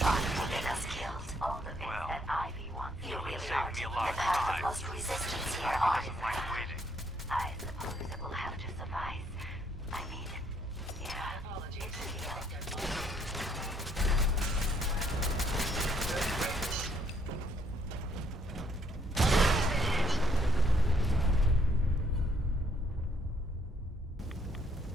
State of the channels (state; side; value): normal; both; correlation 0.68